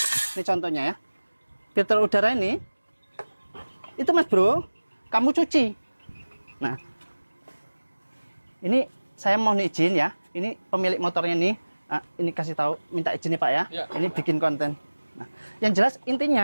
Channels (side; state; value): both; inverted; correlation -1.00